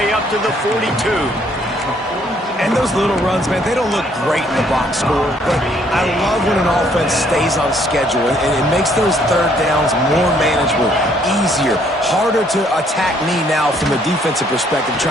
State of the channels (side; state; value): both; normal; correlation 0.66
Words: up to the 42. And those little runs, man, they don't look great in the box score, but I love when an offense stays on schedule, and it makes those third downs more manageable, easier, harder to attack me now from a defensive perspective